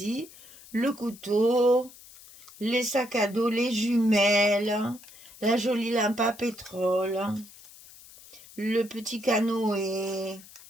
Le couteau, les sacs à dos, les jumelles, la jolie lampe à pétrole, le petit canoë,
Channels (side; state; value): left; noise; hiss, 21 dB below the sound